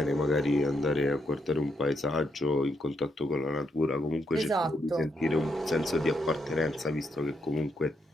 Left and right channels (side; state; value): both; normal; correlation 0.78